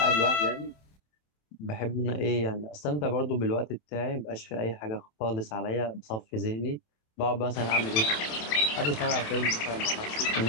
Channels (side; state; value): right; late; 27 ms